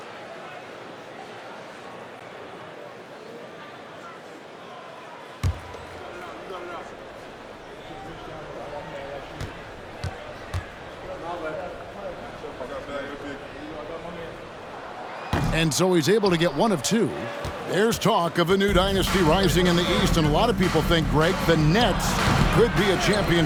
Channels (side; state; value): both; identical; correlation 1.00